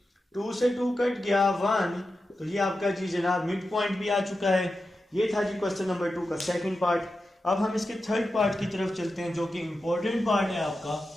2 से 2 कट गया 1। तो ये आपका जी जनाब मिड पॉइंट भी आ चुका है। ये था जी क्वेश्चन नंबर 2 का सेकंड पार्ट। अब हम इसके थर्ड पार्ट की तरफ चलते हैं जो कि इंपॉर्टेंट पार्ट है आपका।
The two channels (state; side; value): normal; both; correlation 0.91